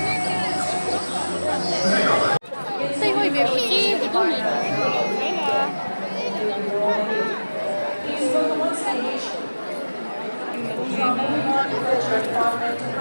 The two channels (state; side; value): inverted; both; correlation -1.00